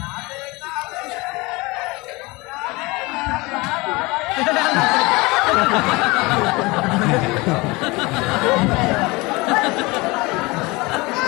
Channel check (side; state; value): right; quieter; 23.9 dB